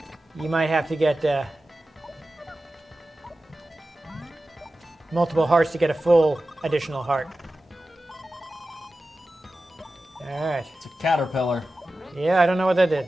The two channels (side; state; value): both; normal; correlation 0.94